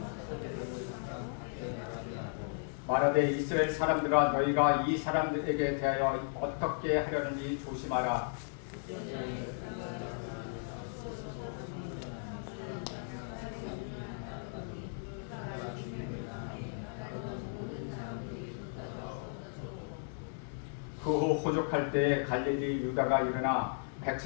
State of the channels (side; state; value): right; silent; 54 dB below the other